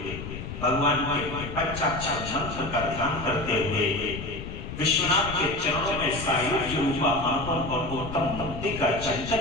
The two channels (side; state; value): left; noise; rumble, 9 dB below the sound